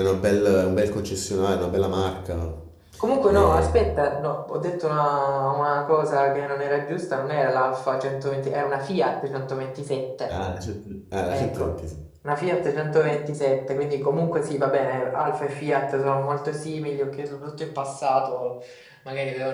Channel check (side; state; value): both; identical; correlation 1.00